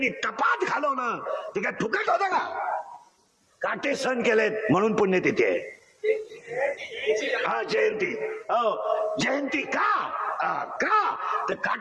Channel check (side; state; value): both; identical; correlation 1.00